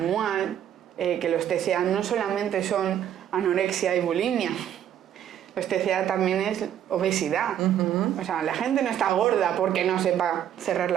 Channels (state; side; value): quieter; left; 10.3 dB